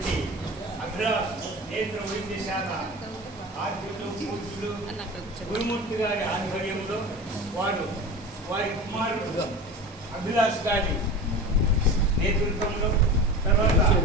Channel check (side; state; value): both; normal; correlation 0.32